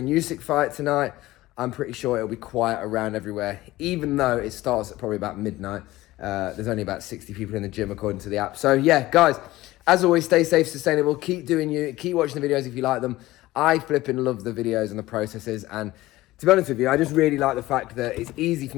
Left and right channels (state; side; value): quieter; right; 17.5 dB